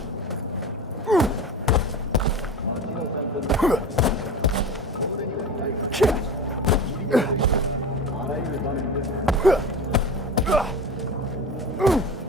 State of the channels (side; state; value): both; normal; correlation 0.29